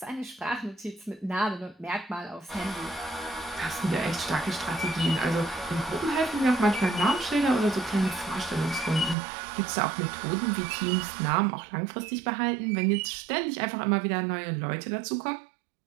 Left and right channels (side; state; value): left; drops out; at 9.2 s